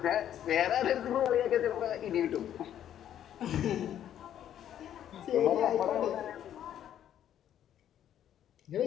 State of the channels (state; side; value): quieter; right; 10.6 dB